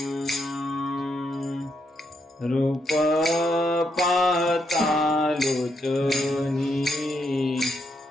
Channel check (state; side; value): normal; both; correlation 0.78